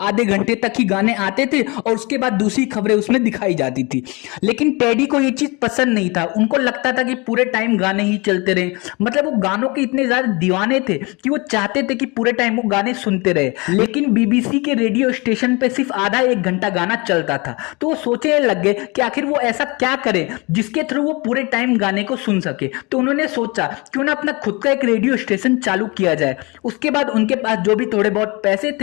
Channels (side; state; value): right; quieter; 26.7 dB